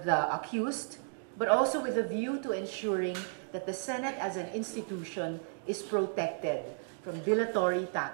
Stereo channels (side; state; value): left; silent; digital silence